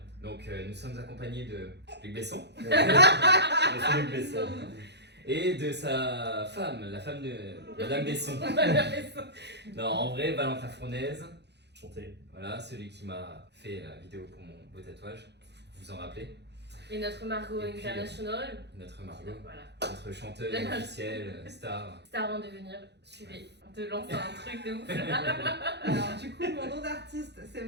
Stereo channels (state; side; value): late; left; 0.50 ms